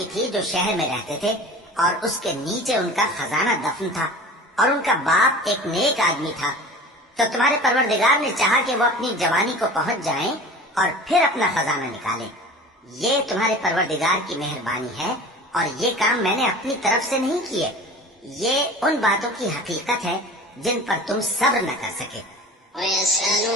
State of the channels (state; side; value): normal; both; correlation 0.39